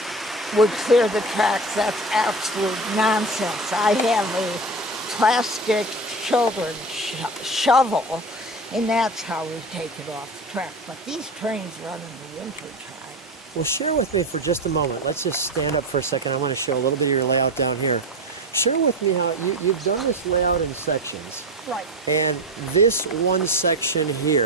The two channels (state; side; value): normal; both; correlation 0.26